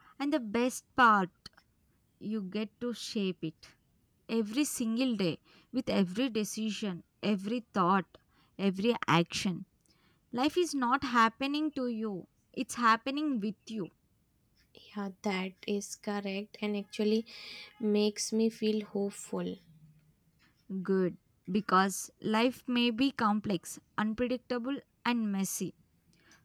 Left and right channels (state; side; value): identical; both; correlation 1.00